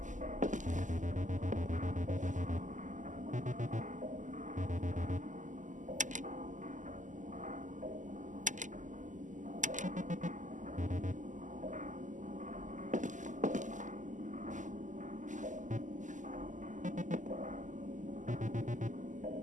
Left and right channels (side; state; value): left; late; 0.37 ms